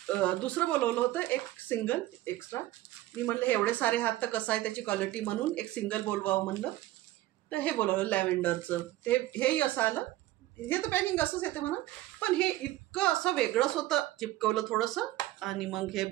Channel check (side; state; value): left; quieter; 16.1 dB